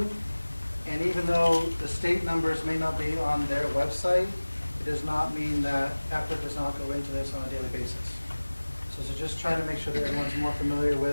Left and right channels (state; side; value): inverted; both; correlation -1.00